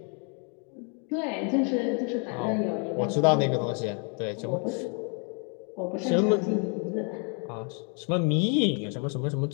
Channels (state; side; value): quieter; right; 39.0 dB